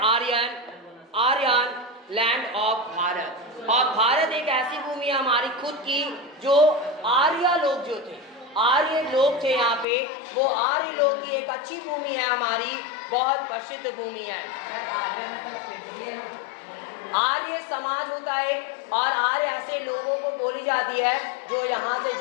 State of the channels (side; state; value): right; drops out; at 9.9 s